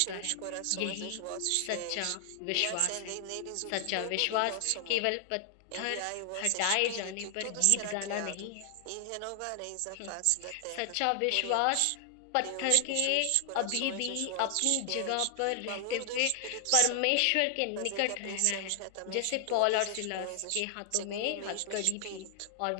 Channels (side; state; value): both; different; correlation 0.00